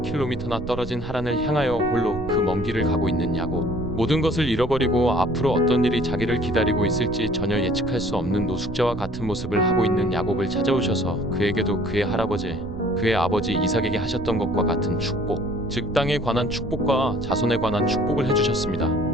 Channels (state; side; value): noise; right; rumble, 11 dB below the sound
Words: 떨어진 하란을 향하여 홀로 그 먼 길을 가고 있는 야곱. 모든 것을 잃어버리고 앞으로 어떤 일이 자기를 기다리고 있을지 전혀 예측할 수 없는 노숙자와 같은 모습을 하고 있는 야곱을 찾아오셔서 그에게도 그의 할아버지, 그의 아버지 이삭에게 하셨던 것과 같은 축복, 즉 땅에 관한 축복과 자손에 관한 축복을